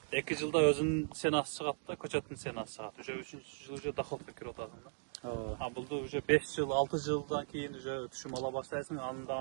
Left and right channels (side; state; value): left; silent; digital silence